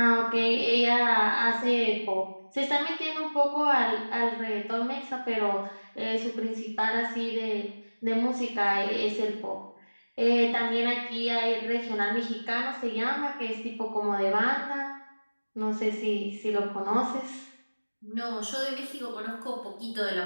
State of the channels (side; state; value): both; inverted; correlation -1.00